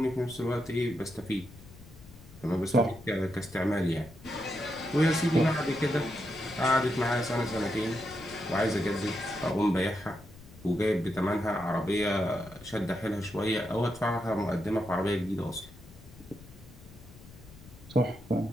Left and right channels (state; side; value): noise; left; rumble, 19 dB below the sound